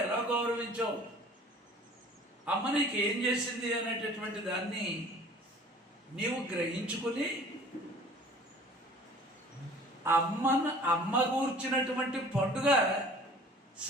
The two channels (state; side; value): normal; both; correlation 0.48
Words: ఎలా గౌరవించావు, అమ్మ నీకు ఏం చేసింది అనేటటువంటి దాన్ని నీవు గ్రహించుకుని అమ్మ కూర్చున్నటువంటి పండుగ